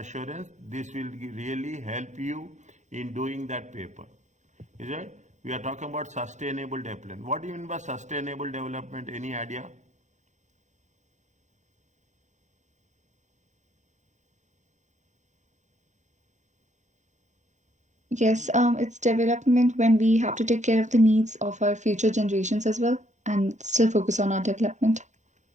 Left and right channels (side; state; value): left; late; 0.35 ms